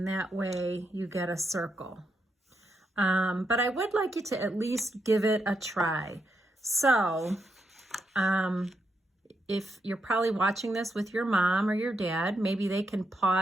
that way you get a circle. But I would like you to at least give it a try. So if you're probably watching this with your mom or your dad, maybe they can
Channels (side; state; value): both; normal; correlation 0.81